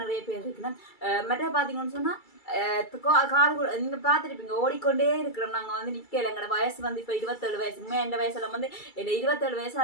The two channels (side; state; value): right; late; 2.3 ms